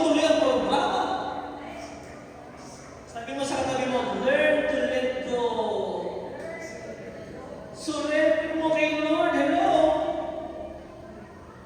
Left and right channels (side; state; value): both; identical; correlation 1.00